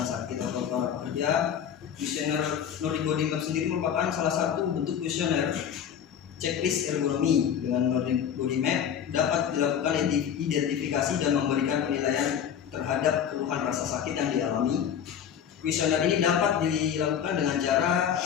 sakit atau para pekerja. Kuesioner Nordic Body Map sendiri merupakan salah satu bentuk kuesioner checklist ergonomi dengan Nordic Body Map dapat dilakukan identifikasi dan memberikan penilaian terhadap keluhan rasa sakit yang dialami. Kuesioner ini dapat dilakukan dengan cara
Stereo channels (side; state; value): right; quieter; 8.6 dB